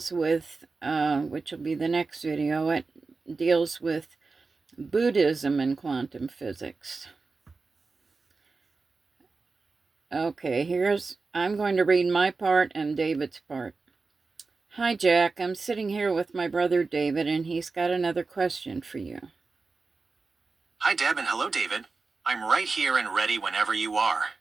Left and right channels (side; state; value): left; quieter; 4.1 dB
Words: with, which will be the next video, it deals with Buddhism and quantum physics. Okay, I'm going to read my part and David's part. Hi, Jack. I'm sitting here with my brother David, and he's got another question for you. Hi, Deb, and hello, David. I'm right here and ready whenever you are.